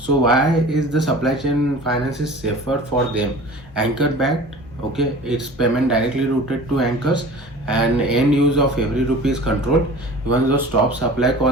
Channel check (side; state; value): both; normal; correlation 0.41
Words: why is the supply chain finance is safer for them? Anchor backed, okay, it's payment directly routed to anchors and end use of every rupee is controlled. Even though stop supply